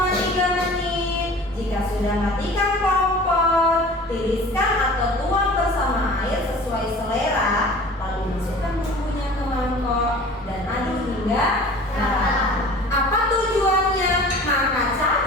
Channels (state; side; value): normal; both; correlation 0.43